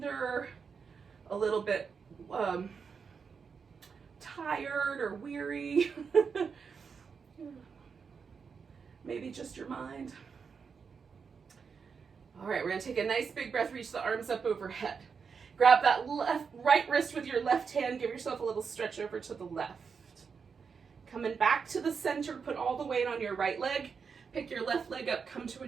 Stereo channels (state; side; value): quieter; left; 5.8 dB